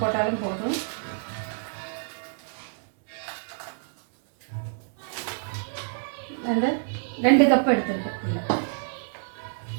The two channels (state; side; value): silent; left; digital silence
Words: போட்டாலும் போதும். அந்த 2 கப் எடுத்துருக்கேன்.